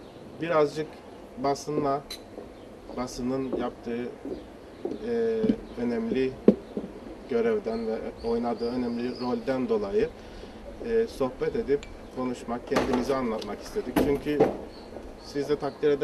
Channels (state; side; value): identical; both; correlation 1.00